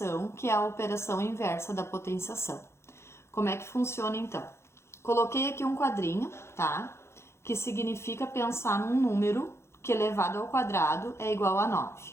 que é a operação inversa da potenciação. Como é que funciona então? Coloquei aqui um quadrinho, tá? Que significa pensar num número que elevado ao quadrado é igual a 9,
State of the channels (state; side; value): late; right; 0.13 ms